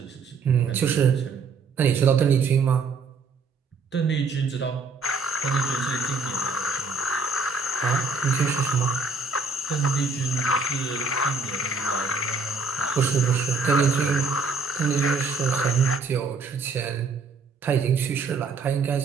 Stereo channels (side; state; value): left; quieter; 4.3 dB